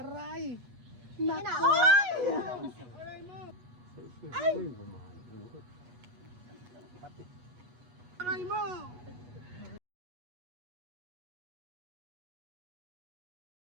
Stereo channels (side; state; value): left; late; 8.2 ms